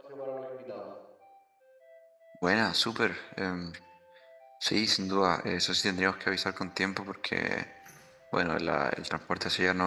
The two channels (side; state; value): both; identical; correlation 1.00